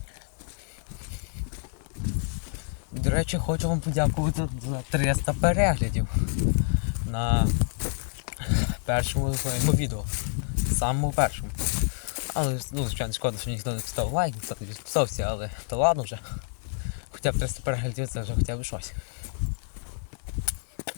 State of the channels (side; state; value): right; silent; 56 dB below the other